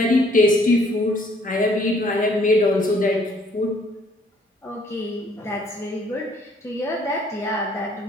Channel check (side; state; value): both; normal; correlation 0.62